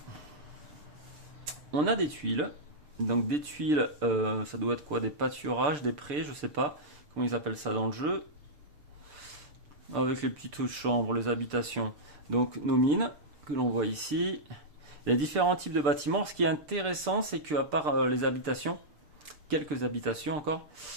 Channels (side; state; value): left; late; 6.7 ms